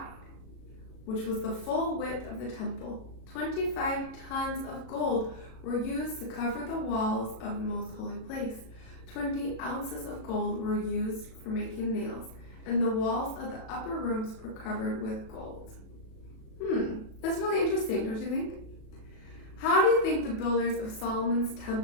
which was the full width of the temple. 25 tons of gold were used to cover the walls of the Most Holy Place. 20 ounces of gold were used for making nails, and the walls of the upper rooms were covered with gold." That's really interesting, don't you think? How do you think the builders of Solomon's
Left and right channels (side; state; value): right; late; 37 ms